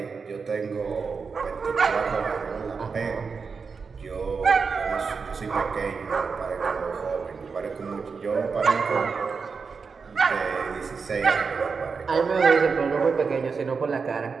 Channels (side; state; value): left; quieter; 5.2 dB